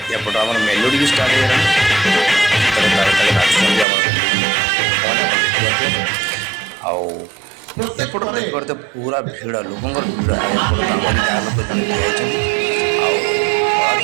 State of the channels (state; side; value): drops out; left; at 3.9 s